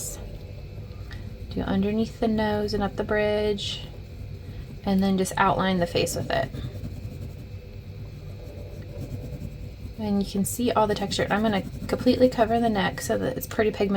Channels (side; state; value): both; identical; correlation 1.00